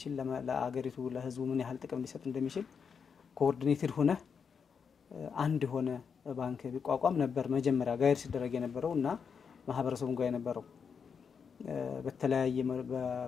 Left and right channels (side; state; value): right; quieter; 6.3 dB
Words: ለአገሪቱ ለህዝቡ ምን ያህል ጥቅም ሊሰጥ እንደሚችል ኮኦርዲኔትድ ሆነ አንድ ሆነ ባንክ ቢቋቋም ነበር መጀመሪያ ጋይድ ሲደረግ የነበረውና ማህበረሰቡን ጋር የነበረው በተለያየ